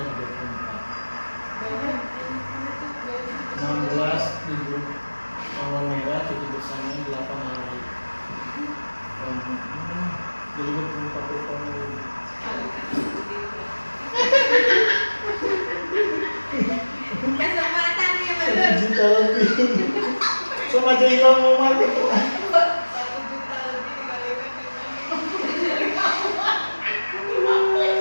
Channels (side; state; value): both; inverted; correlation -1.00